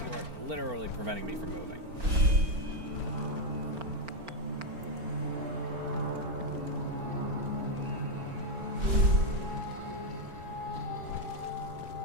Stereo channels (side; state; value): left; late; 4.4 ms